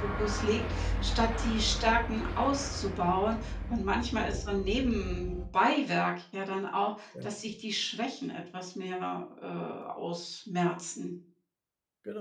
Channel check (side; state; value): both; identical; correlation 1.00